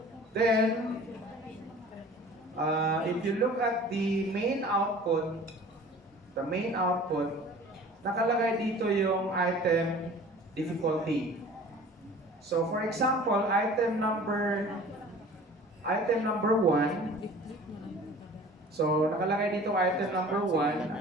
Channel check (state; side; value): normal; both; correlation 0.45